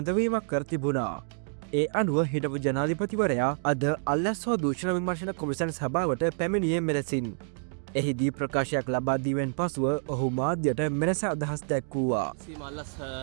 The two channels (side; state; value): left; silent; 59 dB below the other